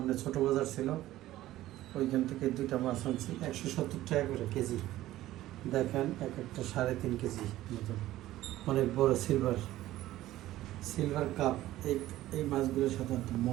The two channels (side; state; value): left; quieter; 15.1 dB